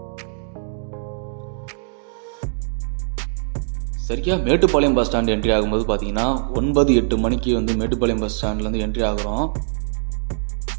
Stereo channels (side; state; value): left; silent; digital silence